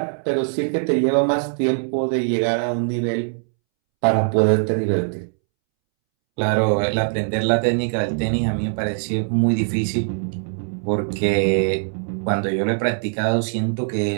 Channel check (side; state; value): left; silent; 65 dB below the other